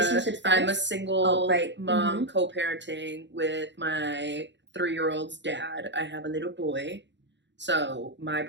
single mom co-parenting with my 3-year-old's dad. I have a little boy. So my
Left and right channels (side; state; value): left; late; 0.52 ms